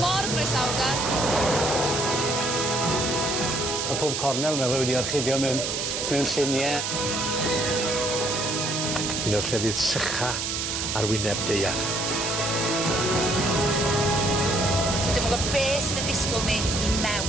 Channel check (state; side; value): noise; right; hiss, 2 dB below the sound